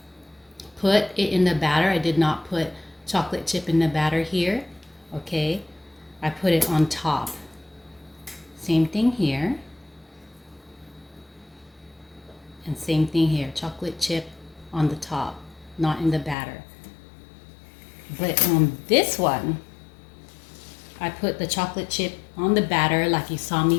put it in the batter. I did not put chocolate chip in the batter here. Okay. I put it on top. Same thing here. And same thing here. Chocolate chip on the top, not in the batter. But on this one, I put the chocolate chip on the batter like you saw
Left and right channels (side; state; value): right; drops out; at 16.4 s